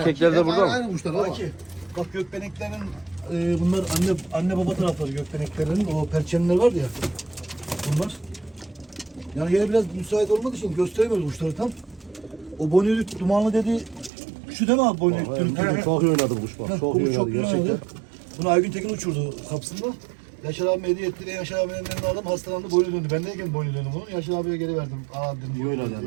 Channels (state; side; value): drops out; left; at 14.1 s